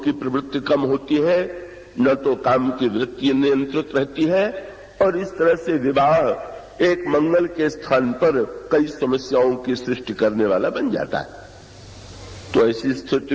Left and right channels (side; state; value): both; identical; correlation 1.00